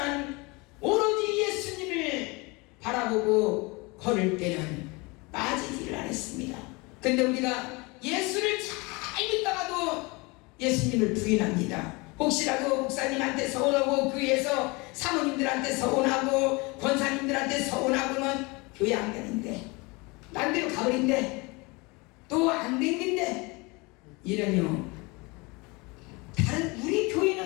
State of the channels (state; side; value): quieter; right; 26.3 dB